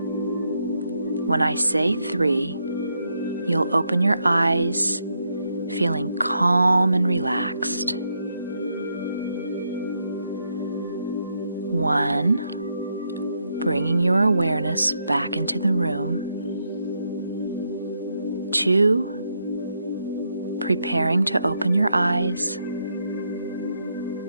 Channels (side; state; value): both; inverted; correlation -0.80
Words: When I say 3, you'll open your eyes, feeling calm and relaxed. 1, bringing your awareness back into the room. 2, preparing to open your eyes.